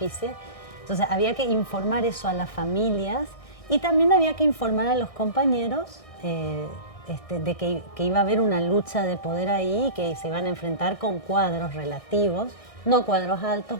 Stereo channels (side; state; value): right; late; 1.6 ms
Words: Entonces había que informar eso a las familias y también había que informar a los compañeros de que iba a haber una lucha de poder ahí y que se iban a enfrentar con cuadros relativos, no cuadros